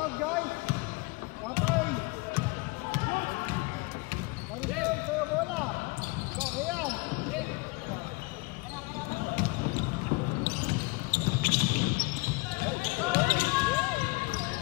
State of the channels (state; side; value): quieter; right; 26.0 dB